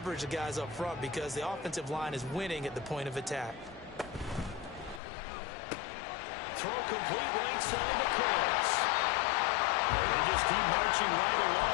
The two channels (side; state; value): right; drops out; at 5.0 s